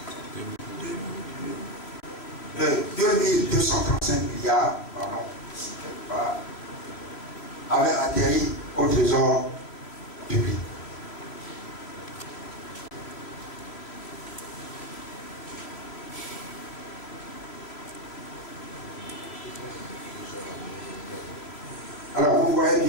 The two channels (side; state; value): right; late; 3.1 ms